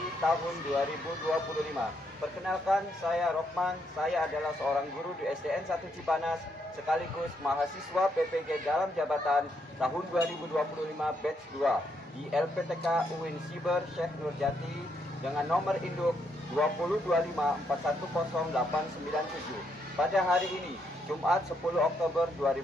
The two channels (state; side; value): normal; both; correlation 0.76